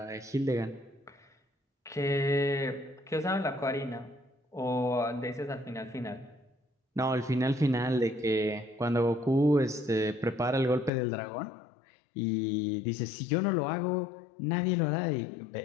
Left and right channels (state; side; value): drops out; right; at 10.9 s